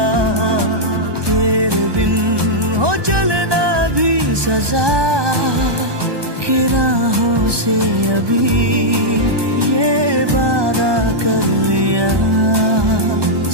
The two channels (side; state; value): left; late; 1.2 ms